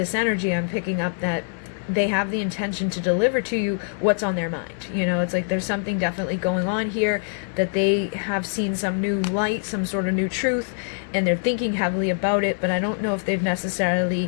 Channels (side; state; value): right; silent; digital silence